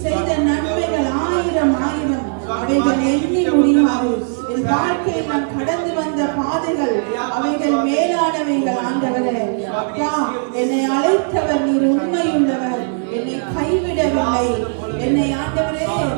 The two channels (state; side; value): silent; left; 57 dB below the other